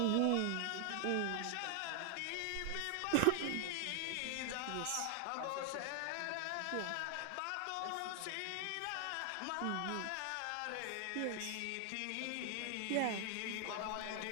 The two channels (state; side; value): different; both; correlation 0.00